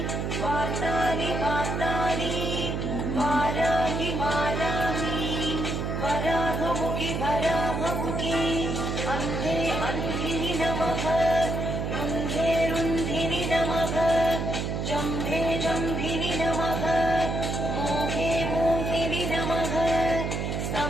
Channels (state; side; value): noise; right; hum, 2 dB below the sound